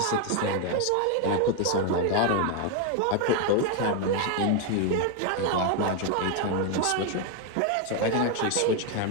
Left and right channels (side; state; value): both; different; correlation 0.01